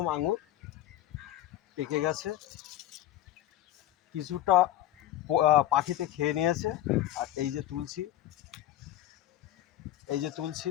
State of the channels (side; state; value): right; quieter; 13.3 dB